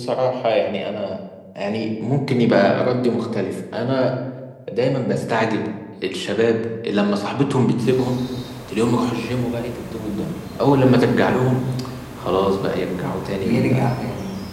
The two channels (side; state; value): both; identical; correlation 1.00